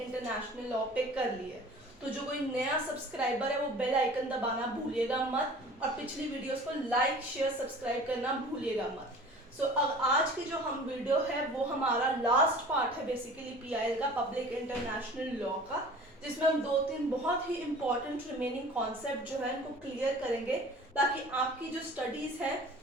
international law पे कर लिए, तो जो कोई नया सब्सक्राइबर है वो बेल आइकन दबाना भूलिएगा मत और पिछली वीडियोस को लाइक शेयर सब्सक्राइब करना भूलिएगा मत। अब आज की जो हम वीडियो है वो हमारा लास्ट पार्ट है बेसिकली PIL का, पब्लिक इंटरनेशनल लॉ का, जिसमें हम 2-3 बहुत ही इंपॉर्टेंट रिमेनिंग कॉन्सेप्ट जो है इनको क्लियर करेंगे ताकि आपकी जो स्टडीज है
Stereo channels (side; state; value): both; normal; correlation 0.44